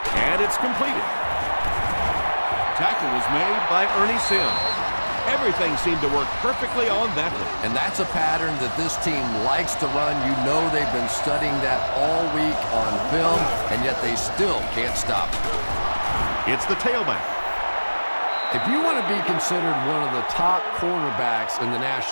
and it's completed. Tackle was made by Ernie Sims. Everything seemed to work perfectly on that one. And that's a pattern that this team likes to run. You know they've been studying that all week on film, and yet they still can't stop it. It's the tailback. If you want to be considered one of the top cornerbacks in the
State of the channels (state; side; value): inverted; both; correlation -1.00